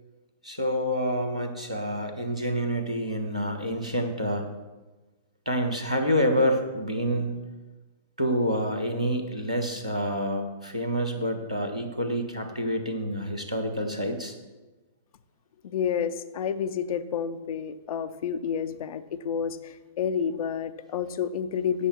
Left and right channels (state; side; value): inverted; both; correlation -0.50